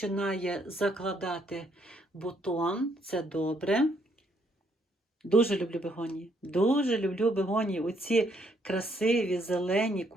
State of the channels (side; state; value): both; normal; correlation 0.71